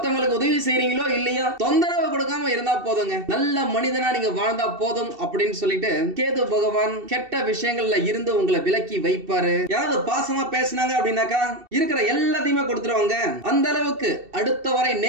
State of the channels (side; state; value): left; late; 2.7 ms